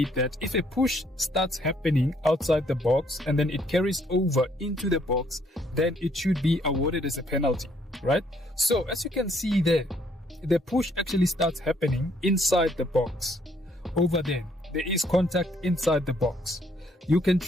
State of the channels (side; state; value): both; normal; correlation 0.67